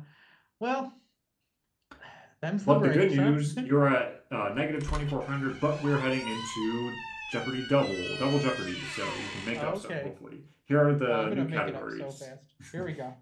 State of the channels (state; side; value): identical; both; correlation 1.00